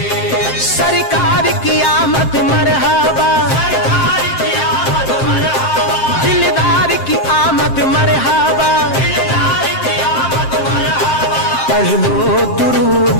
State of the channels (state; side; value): late; right; 7.6 ms